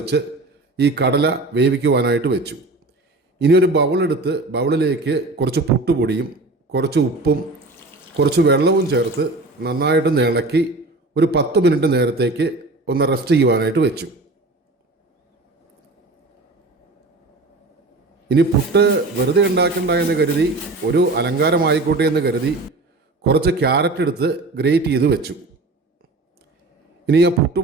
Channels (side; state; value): left; quieter; 3.1 dB